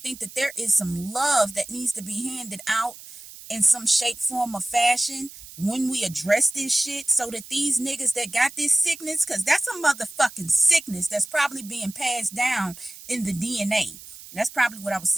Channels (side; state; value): right; noise; hiss, 17 dB below the sound